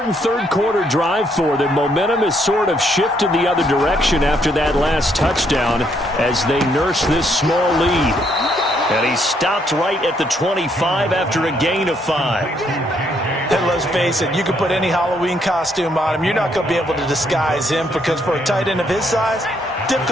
3rd quarter drive for them. Momentum has sort of shifted the other direction after that last touchdown as they nurse this small lead. And he stopped right at the 25 after a gain of 5. And let's face it, you can put any Halloween costume on him. You're not going to be able to disguise him because for a tight end of his size,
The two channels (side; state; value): both; normal; correlation 0.72